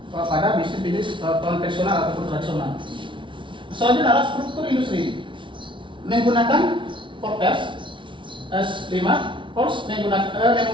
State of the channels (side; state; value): left; late; 0.24 ms